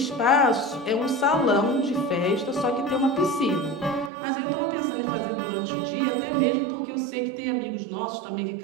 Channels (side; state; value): left; drops out; at 4.1 s